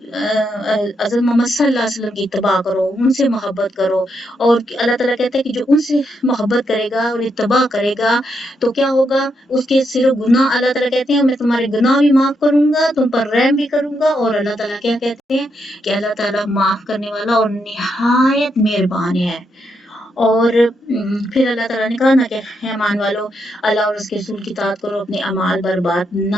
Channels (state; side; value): normal; both; correlation 0.80